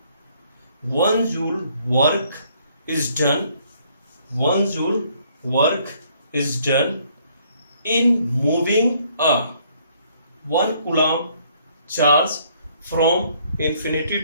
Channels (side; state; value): both; inverted; correlation -0.65